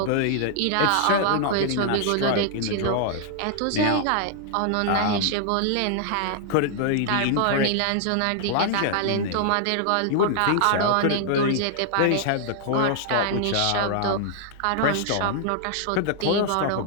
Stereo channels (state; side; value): different; both; correlation -0.01